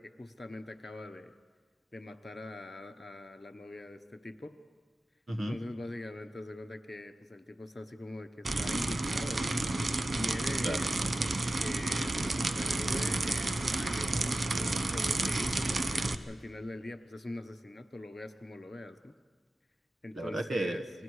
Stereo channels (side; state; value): both; normal; correlation 0.93